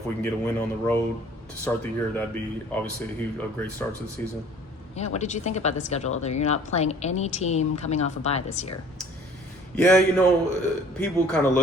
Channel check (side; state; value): both; normal; correlation 0.51